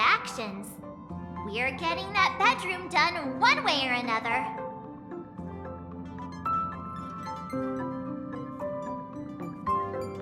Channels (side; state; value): both; identical; correlation 1.00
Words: We're getting that bedroom done one way or another.